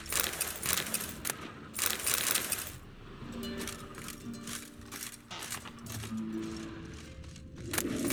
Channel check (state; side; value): identical; both; correlation 1.00